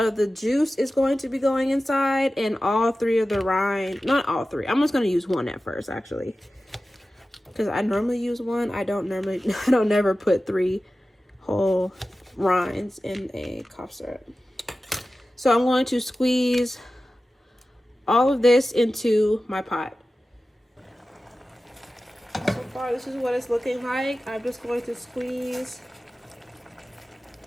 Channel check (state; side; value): normal; both; correlation 0.95